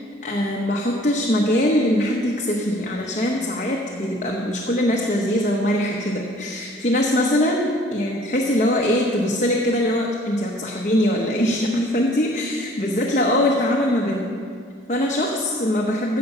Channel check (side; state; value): both; normal; correlation 0.54